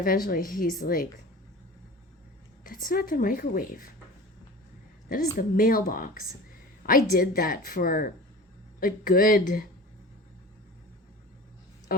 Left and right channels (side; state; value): both; normal; correlation 0.37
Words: he's like, that's not the microwave. That is the mailbox. I did that for a good,